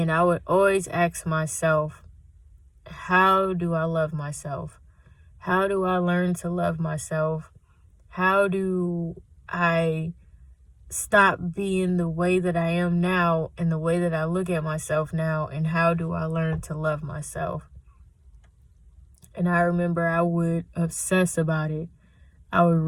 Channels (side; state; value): both; identical; correlation 1.00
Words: I would always ask myself, how do I love myself? How do I learn to love myself? How do I stop being the way that I am now and the way that I look at myself now? And how do I learn to love myself? And I remember I would obsess about it. I would